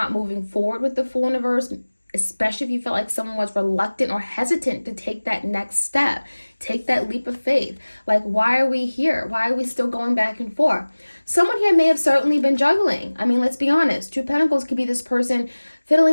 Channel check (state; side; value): inverted; both; correlation -1.00